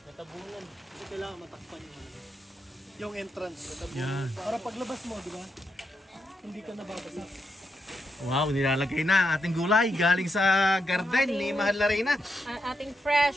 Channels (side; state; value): both; normal; correlation 0.82